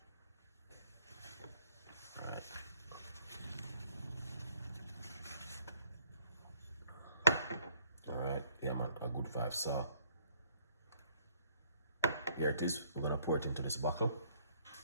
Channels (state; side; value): inverted; both; correlation -0.63